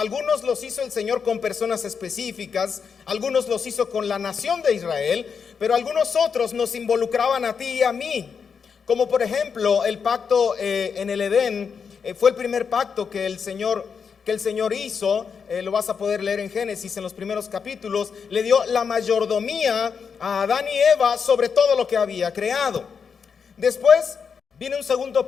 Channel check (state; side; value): quieter; right; 6.2 dB